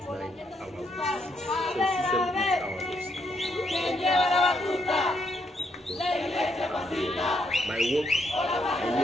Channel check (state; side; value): normal; both; correlation 0.75